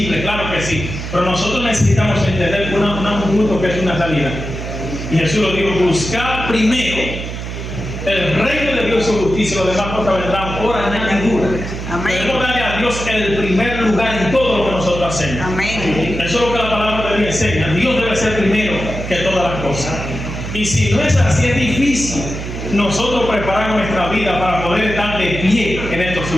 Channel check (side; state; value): right; noise; hum, 7 dB below the sound